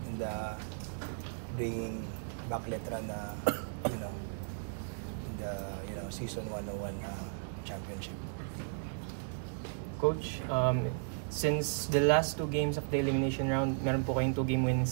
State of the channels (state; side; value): silent; left; digital silence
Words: and bringing back Letra na in the season 101 championship. Coach, since the last two games of the elimination round, meron po kayong 2-game winning